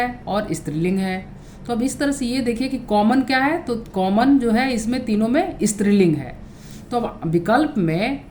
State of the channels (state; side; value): identical; both; correlation 1.00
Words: और स्त्रीलिंग है। तो अब इस तरह से ये देखिए कि कॉमन क्या है, तो कॉमन जो है इसमें तीनों में स्त्रीलिंग है। तो अब विकल्प में